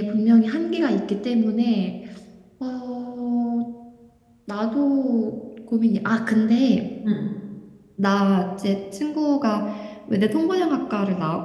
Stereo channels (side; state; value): both; identical; correlation 1.00